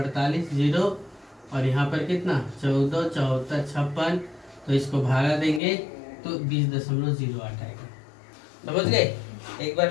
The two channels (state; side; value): drops out; right; at 5.6 s